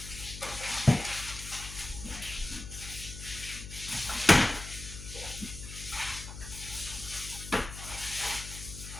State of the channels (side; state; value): left; noise; hum, 11 dB below the sound